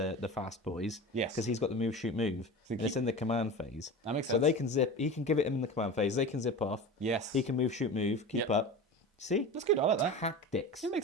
fast boys. Yes. Because he's got the move, shoot, move. And it's in the command phase. That makes So sense. they can zip. He can give it him in the command phase. They can zip off. Yes. He can move, shoot, move. Keep Yep. up. See? That's good. I like that. Tactics. It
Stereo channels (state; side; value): normal; both; correlation 0.30